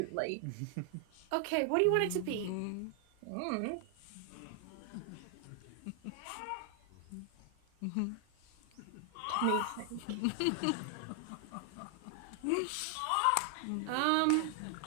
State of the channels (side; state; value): both; different; correlation 0.00